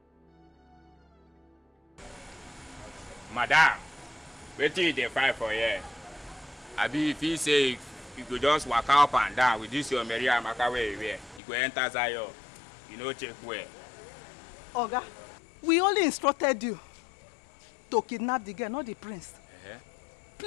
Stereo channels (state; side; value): drops out; right; at 11.4 s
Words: Madam, wetin you dey fight for here? Abi if he say you go just waka up and down with this your Mary Amaka wey you wear, you go enter Zion, you no check well. Oga, we only instructed you to kidnap the girl, not the prince.